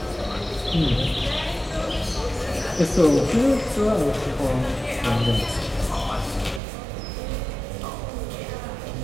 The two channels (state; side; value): drops out; left; at 6.6 s